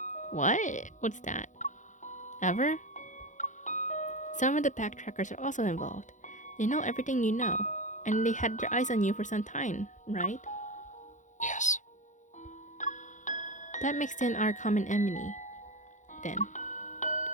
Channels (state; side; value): late; right; 0.36 ms